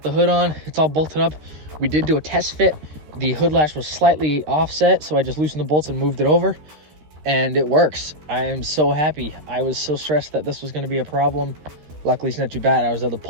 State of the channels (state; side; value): late; left; 13 ms